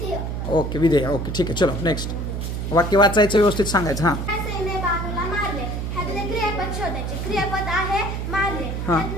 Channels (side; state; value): right; noise; hum, 3 dB below the sound